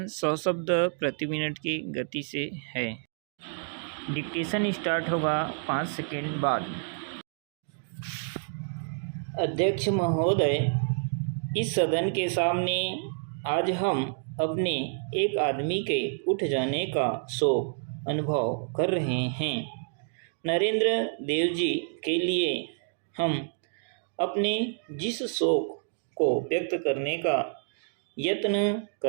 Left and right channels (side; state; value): left; silent; digital silence